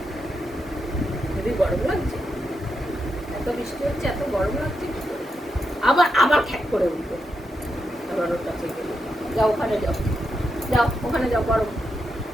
খুবই গরম লাগছে, এত বৃষ্টি হচ্ছে, এত গরম লাগছে কি করে? আবার আবার খ্যাক করে উঠবে। আবার ওর কাছে গেলে যাও, ওখানে যাও, যাও ওখানে যাও, বড়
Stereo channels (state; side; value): normal; both; correlation 0.84